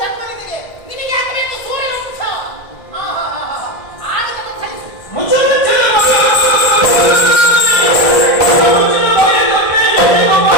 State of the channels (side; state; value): right; late; 1.6 ms